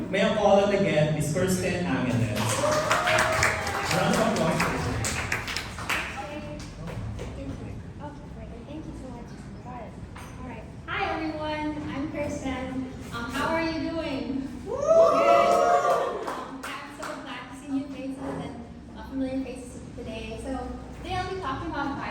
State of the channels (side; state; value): both; identical; correlation 1.00